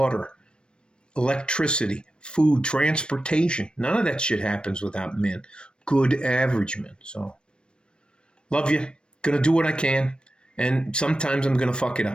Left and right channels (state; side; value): late; right; 0.054 ms